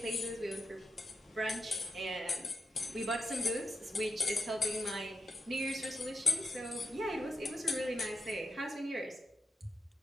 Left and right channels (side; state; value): both; normal; correlation 0.87